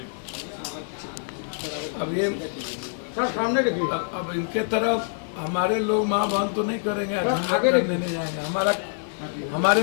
अब ये सर सामने देखिए। अब इनके तरफ हमारे लोग माँ बहन तो नहीं करेंगे, आगे लेने जाएंगे।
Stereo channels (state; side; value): silent; right; digital silence